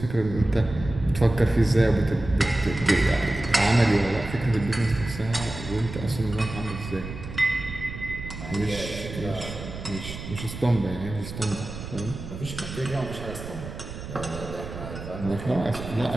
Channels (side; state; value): right; noise; rumble, 10 dB below the sound